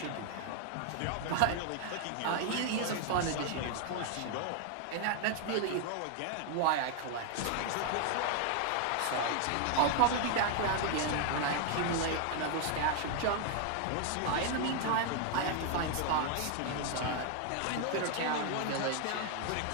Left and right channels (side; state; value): both; different; correlation 0.00